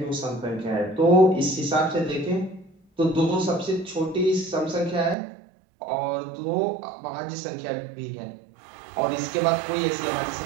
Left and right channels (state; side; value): drops out; left; at 5.2 s